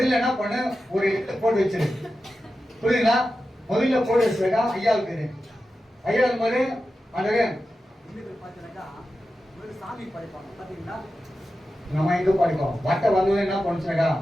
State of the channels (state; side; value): normal; both; correlation 0.92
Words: என்ன பண்ணு, ஒரு இடத்துல போட்டு வச்சிரு. புரியுதுங்களா? முதல்ல போட்டு வச்சுக்கா ஐயாவுக்கு. ஐயாவுக்கு போது அந்த சாமி படைப்பாங்க பாத்தீங்களா, நம்ம எங்க படிப்போம். வட்டை வந்து என்ன பண்ணுச்சுனாக்கா